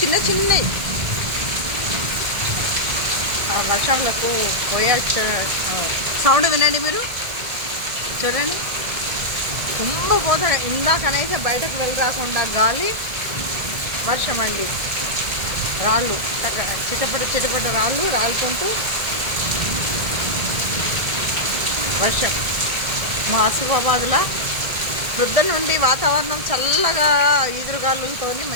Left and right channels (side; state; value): left; late; 1.7 ms